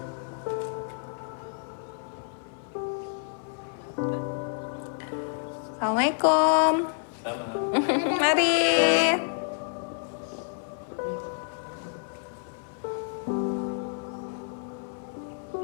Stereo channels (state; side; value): silent; right; 59 dB below the other